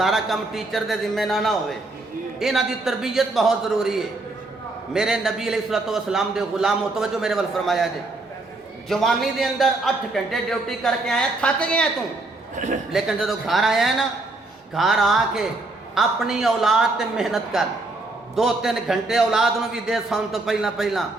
ਕੰਮ ਟੀਚਰ ਦੇ ਜ਼ਿੰਮੇ ਨਾਲ ਨਾ ਹੋਵੇ, ਇਹਨਾਂ ਦੀ ਤਰਬੀਅਤ ਬਹੁਤ ਜ਼ਰੂਰੀ ਹੈ। ਮੇਰੇ ਨਬੀ अलैहिस्सलातु वस्सलाम ਦੇ ਗੁਲਾਮ ਤਵੱਜੋ ਮੇਰੇ ਵੱਲ ਫਰਮਾਇਆ ਜੇ, जवानी के अंदर 8 घंटे ड्यूटी करके आया, थक गया तू, लेकिन जो घर आया है ना, घर आके अपनी औलाद ते मेहनत कर, 2-3 घंटे औलाद नूं भी दे सन तो पहला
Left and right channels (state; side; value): quieter; left; 3.0 dB